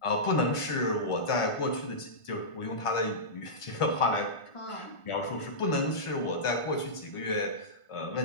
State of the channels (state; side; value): late; right; 1.5 ms